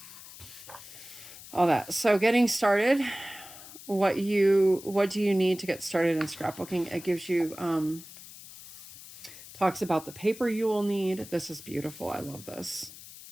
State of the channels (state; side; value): noise; left; hiss, 16 dB below the sound